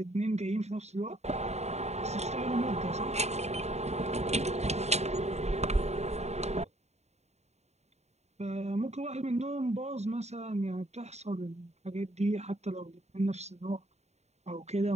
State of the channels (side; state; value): left; late; 0.32 ms